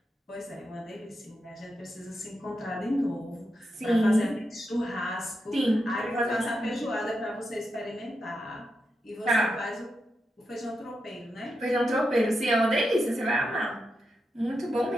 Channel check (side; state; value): both; normal; correlation 0.86